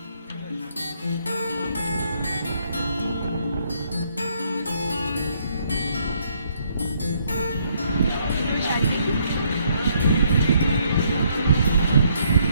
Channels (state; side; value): inverted; both; correlation -0.70